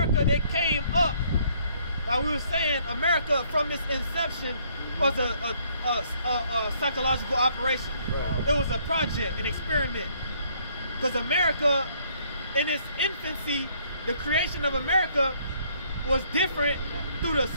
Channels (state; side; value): inverted; both; correlation -0.65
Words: that came up. Like we were saying, America from its inception was a psychological operation. It was a project, an experiment. Because America, in its infancy, the creation of America was different through the